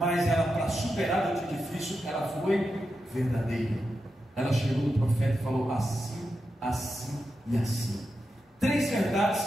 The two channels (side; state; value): both; normal; correlation 0.88